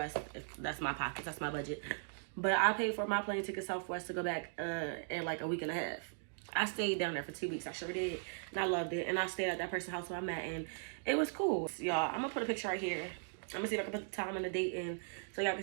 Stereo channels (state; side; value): silent; left; digital silence